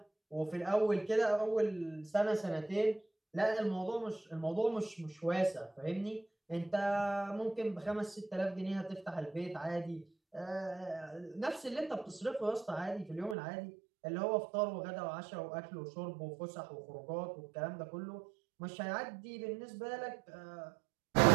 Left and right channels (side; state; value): left; drops out; at 13.4 s